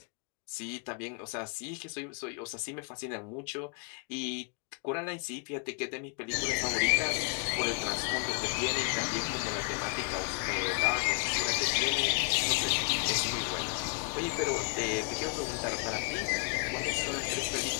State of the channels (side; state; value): right; quieter; 35.8 dB